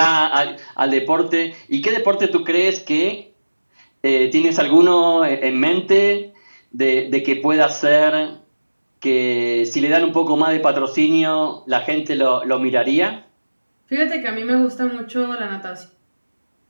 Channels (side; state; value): both; inverted; correlation -1.00